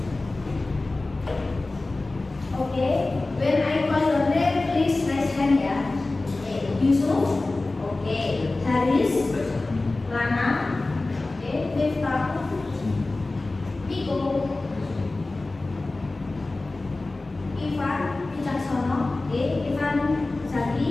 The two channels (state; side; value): quieter; right; 3.1 dB